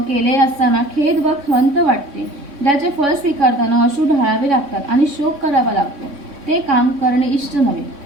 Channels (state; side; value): late; left; 3.6 ms